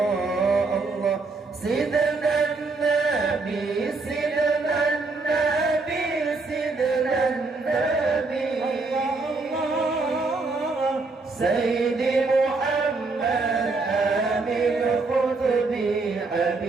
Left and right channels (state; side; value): quieter; left; 3.7 dB